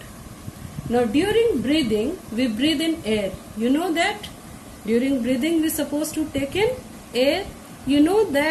Now during breathing, we breathe in air. You know that? During breathing, we are supposed to take in air. You know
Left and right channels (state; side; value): identical; both; correlation 1.00